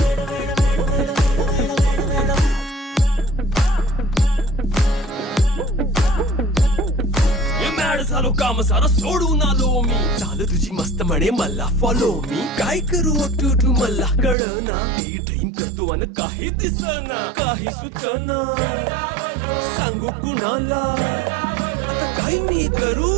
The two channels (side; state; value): left; drops out; at 14.4 s